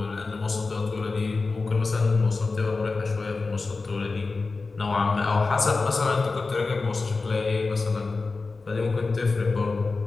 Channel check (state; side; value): quieter; right; 3.9 dB